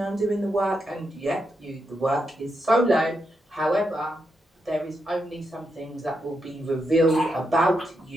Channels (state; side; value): normal; both; correlation 0.83